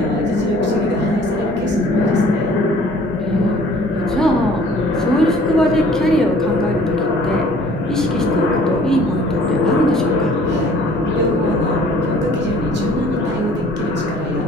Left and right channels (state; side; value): normal; both; correlation 0.53